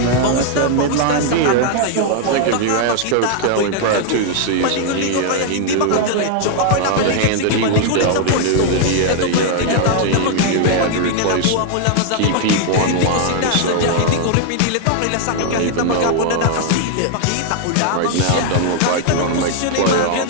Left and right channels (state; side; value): different; both; correlation 0.00